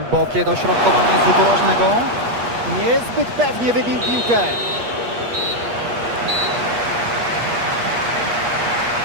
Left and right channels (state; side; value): late; left; 8.4 ms